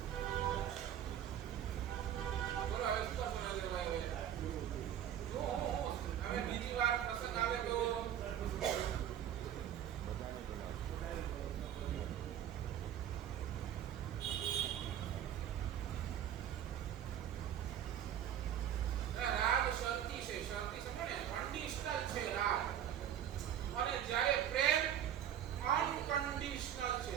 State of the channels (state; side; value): quieter; left; 10.3 dB